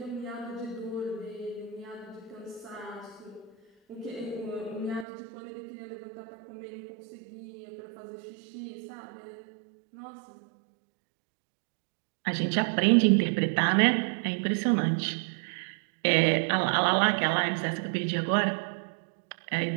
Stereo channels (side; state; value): left; drops out; at 5.1 s